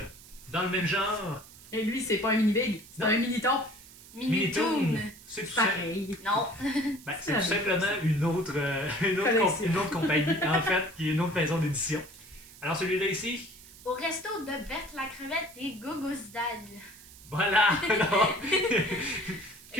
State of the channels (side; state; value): right; noise; hiss, 20 dB below the sound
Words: dans le même genre. Et lui, c'est pas un mini big, c'est Non. un mini ton. Minitoon. C'est tout, Pareil. Non. ben, C'est c'est la tout même simplement une autre, Collection. une autre compagnie, en fait, qui est une autre maison d'édition. Alors celui-là ici, Au resto de Berthe la crevette et Gogosdal. voilà. Alors, Il y